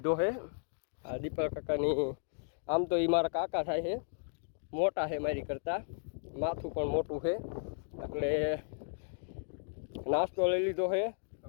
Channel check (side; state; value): right; silent; digital silence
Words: છે. આ દીપક કાકાની, આમ તો એ મારા કાકા થાય છે, મોટા છે મારી કરતાં, માથું પણ મોટું છે, એટલે નાસ્તો લઈ લીધો છે.